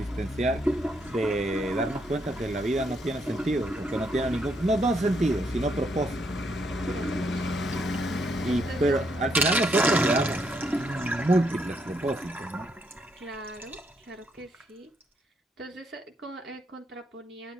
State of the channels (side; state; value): both; normal; correlation 0.75